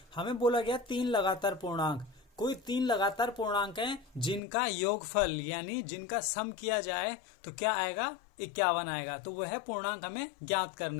हमें बोला गया 3 लगातार पूर्णांक, कोई 3 लगातार पूर्णांक हैं जिनका योगफल यानी जिनका सम किया जाए तो क्या आएगा, 51 आएगा। तो वह पूर्णांक हमें ज्ञात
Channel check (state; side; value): drops out; right; at 4.4 s